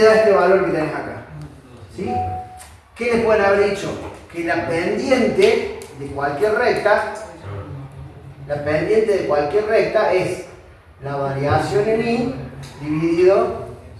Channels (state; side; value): identical; both; correlation 1.00